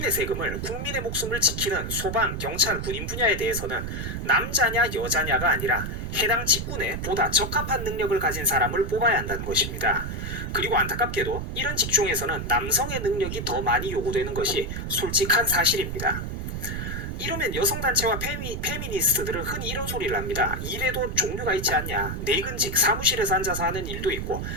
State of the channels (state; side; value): noise; right; rumble, 5 dB below the sound